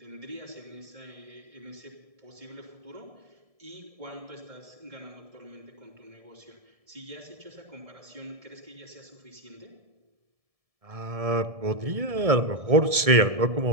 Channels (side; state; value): left; late; 1.7 ms